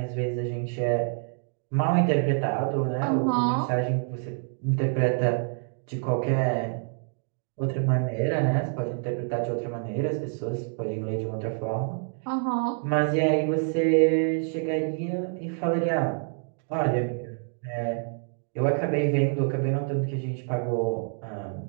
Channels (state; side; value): silent; left; 57 dB below the other